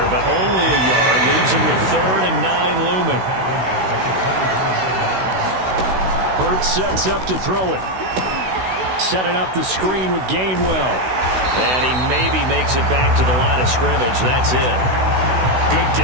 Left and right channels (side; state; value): left; late; 16 ms